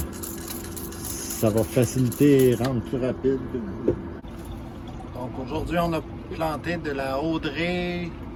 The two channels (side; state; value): both; identical; correlation 1.00